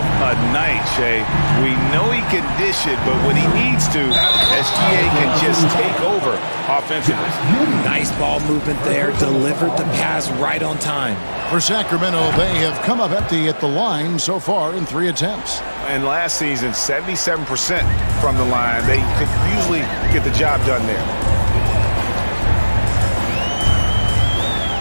a night, Shay. We know he can dish it, but when he needs to, SGA can just take over offensively. Nice ball movement there. Delivered the pass right on time. For Sacramento, they have come up empty at the line so far in 3 attempts. And last season, 77% from the line. They could usually get the job done there.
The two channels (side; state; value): both; inverted; correlation -1.00